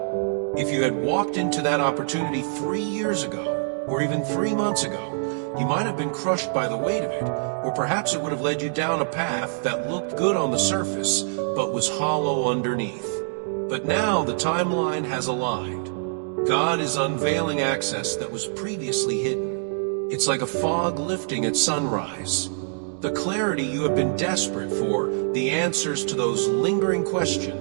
If you had walked into that opportunity 3 years ago, or even 3 months ago, you might have been crushed by the weight of it, or perhaps it would have led you down a path that looked good on the surface, but was hollow underneath. But now the timeline has aligned. God is unveiling access that was previously hidden. It's like a fog lifting at sunrise. The clarity you have been desperate for, the answers to those lingering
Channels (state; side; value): silent; left; digital silence